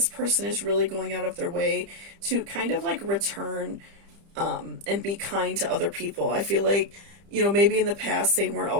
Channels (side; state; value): left; late; 30 ms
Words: person is really going out of their way to kind of like return and be kind to other people. I feel like, maybe in the past they weren't